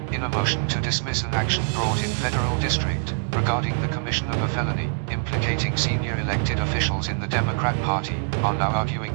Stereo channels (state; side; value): silent; left; digital silence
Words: in a motion to dismiss an action brought in federal district, regarding the commission of a felony, implicating senior elected officials in the Democrat Party, are now arguing